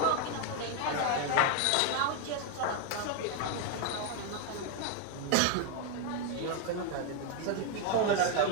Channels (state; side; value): different; both; correlation 0.01